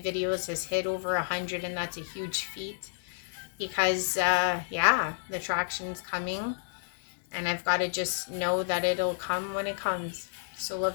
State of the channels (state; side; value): silent; right; digital silence